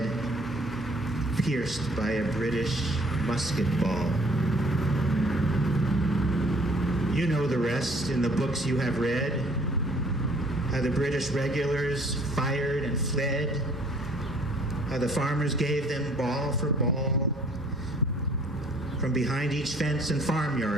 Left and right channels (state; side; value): normal; both; correlation 0.57